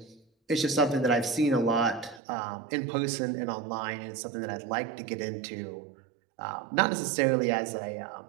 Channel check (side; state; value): left; drops out; at 2.2 s